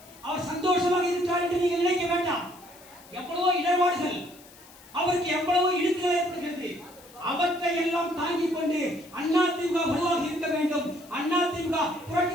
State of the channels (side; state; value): left; noise; hiss, 23 dB below the sound